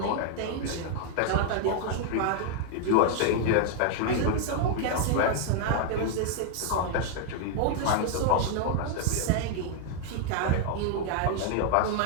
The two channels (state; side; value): different; both; correlation 0.00